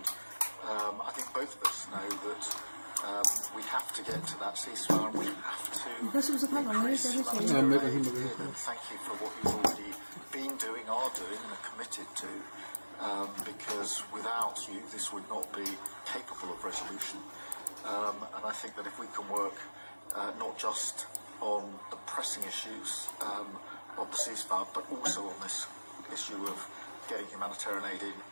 I think both of us know that we have to get to that ceasefire and we have to increase humanitarian aid. And thank you for what you've already been doing, are doing, and are committed to, because without you, this would not be capable of resolution. And I think that if we can work not just on the pressing issues of the ceasefire, but also on this issue of getting humanitarian aid in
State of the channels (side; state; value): both; inverted; correlation -1.00